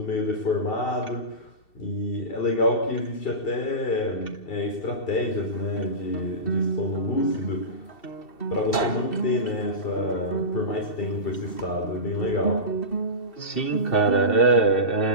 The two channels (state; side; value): late; right; 2.7 ms